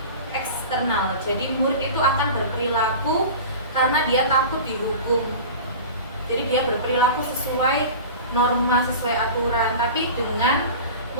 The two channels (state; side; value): inverted; both; correlation -0.34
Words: eksternal. Jadi murid itu akan berperilaku karena dia takut dihukum. Jadi dia berperilaku sesuai norma, sesuai aturan, tapi dengan